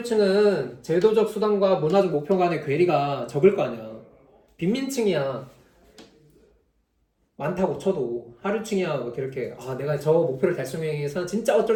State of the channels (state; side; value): identical; both; correlation 1.00